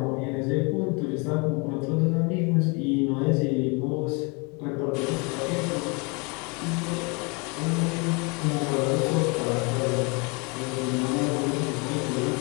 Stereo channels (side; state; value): right; quieter; 31.2 dB